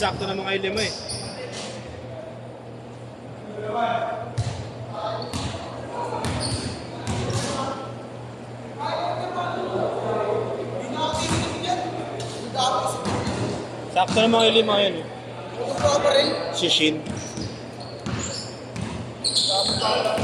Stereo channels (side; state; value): both; identical; correlation 1.00